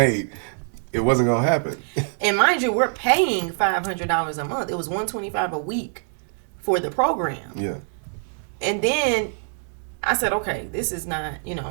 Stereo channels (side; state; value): left; silent; digital silence